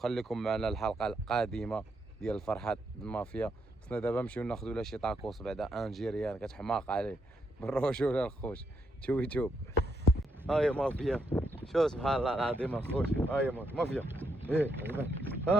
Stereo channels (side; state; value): both; normal; correlation 0.79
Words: معنا الحلقه القادمه ديال الفرحات المافيا. خصنا دابا نمشيو ناخذوا لا شي طاكوس بعدا انجيريان كتحماق عليه بالرجوله الخوش. توب هاي مافيا. شو سبحان الله العظيم الخوش. هاي مافيا ايه